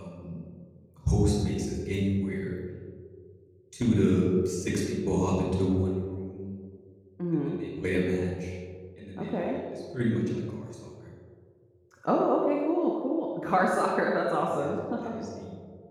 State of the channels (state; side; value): identical; both; correlation 1.00